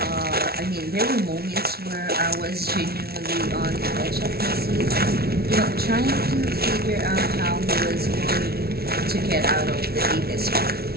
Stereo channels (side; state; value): left; late; 0.45 ms